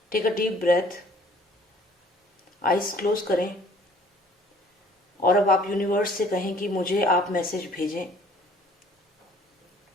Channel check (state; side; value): normal; both; correlation 0.56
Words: Take a deep breath, eyes close करें और अब आप यूनिवर्स से कहें कि मुझे आप मैसेज भेजें।